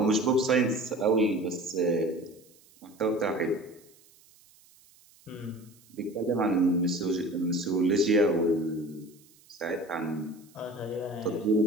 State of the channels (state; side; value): noise; right; hiss, 28 dB below the sound